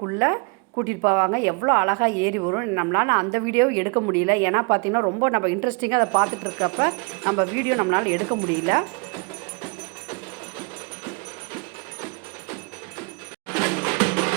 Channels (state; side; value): quieter; left; 31.8 dB